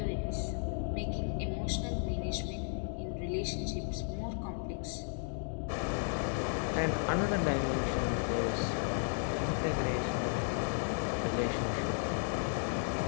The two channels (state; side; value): silent; right; 55 dB below the other